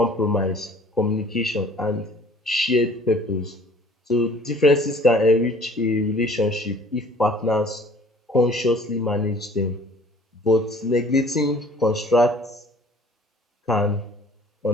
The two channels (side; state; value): both; normal; correlation 0.52